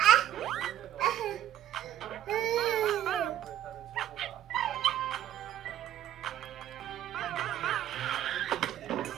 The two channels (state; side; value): quieter; left; 12.0 dB